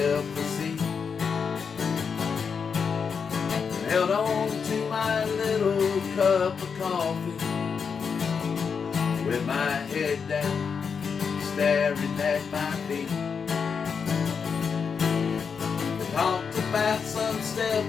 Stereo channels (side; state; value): right; quieter; 6.1 dB